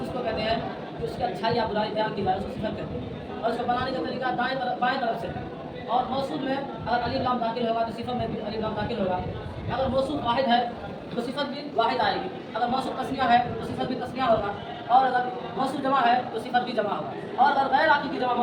اس کو کہتے ہیں کہ اس کی اچھائی یا برائی بیان کی جائے، اس کو صفت کہتے ہیں، اور اس کو بنانے کا طریقہ بائیں طرف سے۔ اور موصوف میں اگر الف لام داخل ہوگا تو صفت میں بھی الف لام داخل ہوگا۔ اگر موصوف واحد ہے تو صفت بھی واحد آئے گی، اگر موصوف تسنیہ ہے تو صفت بھی تسنیہ ہوگا، اور اگر موصوف جمع ہے تو صفت بھی جمع ہوگا، اور اگر غیر عاقل کی جمع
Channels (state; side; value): identical; both; correlation 1.00